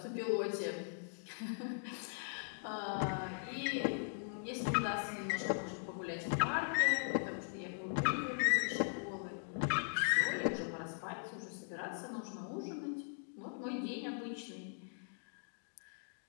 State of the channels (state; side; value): silent; right; digital silence